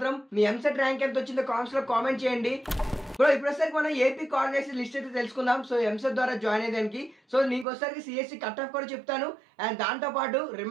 మీ ఎంసెట్ ర్యాంక్ ఎంత వచ్చిందో కామెంట్స్ లో కామెంట్ చేయండి. బ్రో ఇప్పుడు వచ్చేసరికి మనం ఏపీ కాలేజెస్ లిస్ట్ అయితే తెలుసుకుందాం. సో ఎంసెట్ ద్వారా జాయిన్ అయ్యేదానికి. సో నీకు వచ్చేసరికి సిఎస్సి కట్ ఆఫ్ కూడా చెప్తాను అండ్ దాంతో పాటు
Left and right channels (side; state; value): left; drops out; at 7.7 s